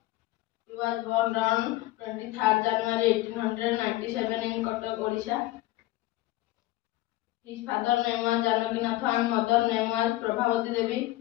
He was born on 23rd January 1897 in Cuttack, Odisha. His father name was Janakinath and mother name was Prabhavati Devi.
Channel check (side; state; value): right; quieter; 17.6 dB